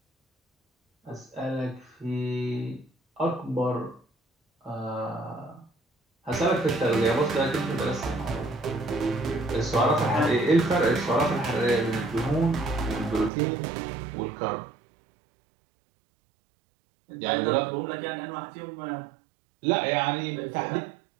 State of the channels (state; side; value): drops out; left; at 13.3 s